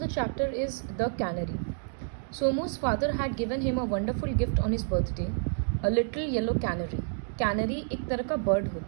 chapter is The Canary. Somu's father had given him a wonderful gift on his birthday, a little yellow canary. Canary एक तरह का bird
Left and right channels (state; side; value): silent; left; 58 dB below the other